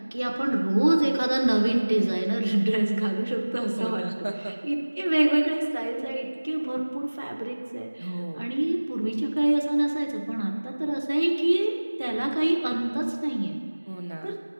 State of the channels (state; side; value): inverted; both; correlation -1.00